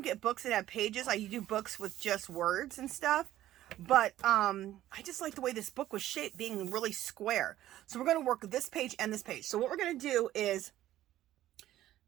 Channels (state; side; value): quieter; left; 13.7 dB